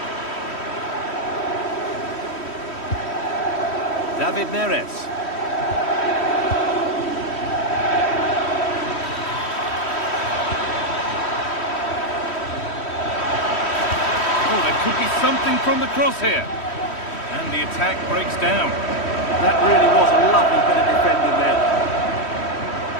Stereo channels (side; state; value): right; late; 3.1 ms